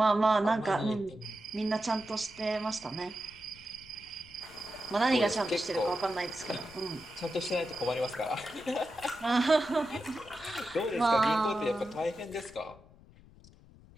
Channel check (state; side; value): noise; left; rumble, 23 dB below the sound